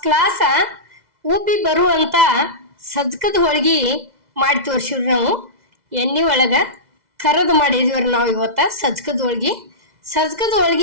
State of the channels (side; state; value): left; late; 2.0 ms